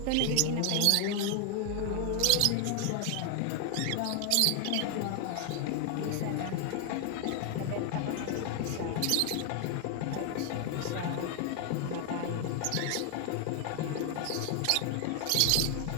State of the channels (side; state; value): both; different; correlation 0.00